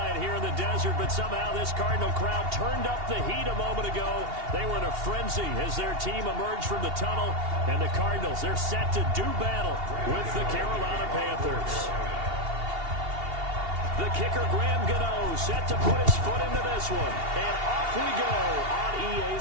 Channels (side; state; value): left; late; 2.8 ms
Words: here in the desert, but somehow this Cardinal crowd turned up the heat a moment ago. They were in a frenzy as their team emerged from the tunnel, and the Cardinals, they're set to do battle with the Carolina Panthers. The kicker, Graham Gano, set to put his foot into this one, and off we go on EA